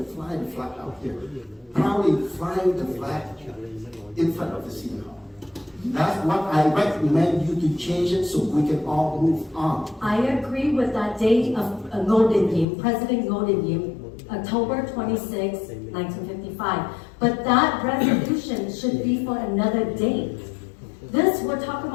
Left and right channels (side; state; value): right; drops out; at 12.7 s